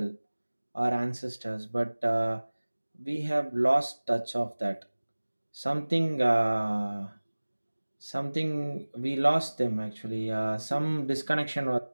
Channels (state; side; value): inverted; both; correlation -1.00